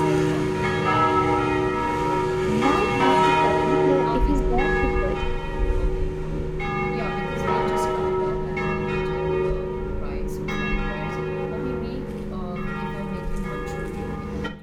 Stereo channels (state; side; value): identical; both; correlation 1.00